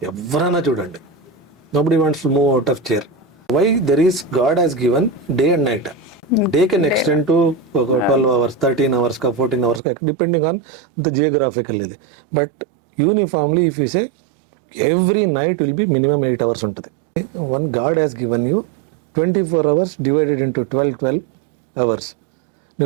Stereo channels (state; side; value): drops out; left; at 9.8 s